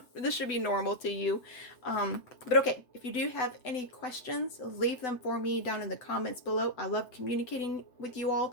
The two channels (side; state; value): right; late; 7.9 ms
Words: This should be normal to you. But okay, if you do have any questions, leave them for me down in the comments below. I love communicating with you